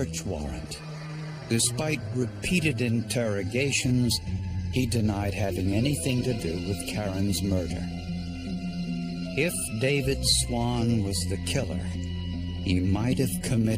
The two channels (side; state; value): both; identical; correlation 1.00